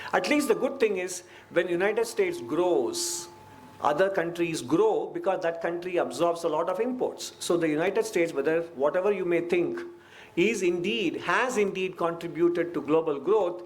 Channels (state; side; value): identical; both; correlation 1.00